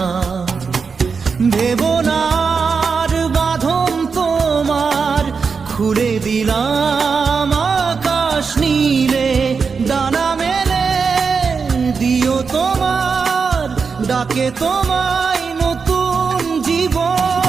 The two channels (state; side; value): quieter; left; 5.4 dB